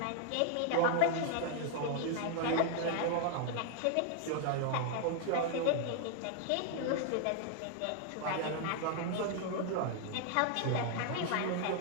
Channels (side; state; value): both; different; correlation 0.00